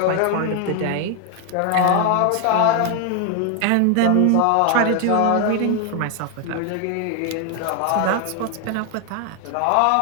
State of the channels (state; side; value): different; both; correlation 0.00